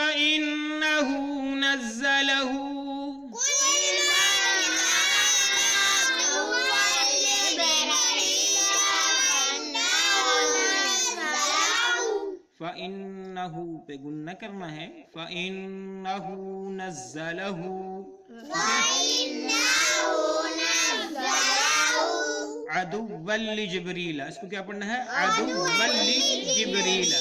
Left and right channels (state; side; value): identical; both; correlation 1.00